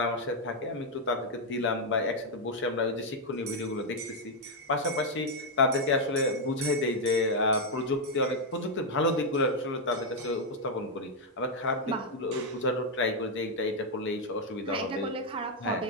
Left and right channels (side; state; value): both; normal; correlation 0.00